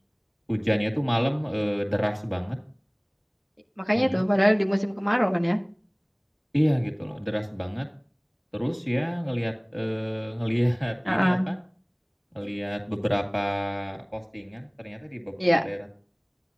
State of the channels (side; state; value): both; identical; correlation 1.00